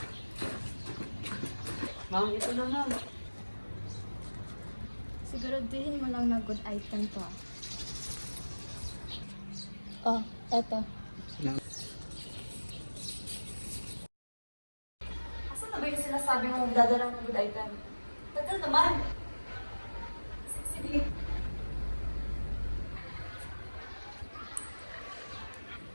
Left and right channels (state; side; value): inverted; both; correlation -1.00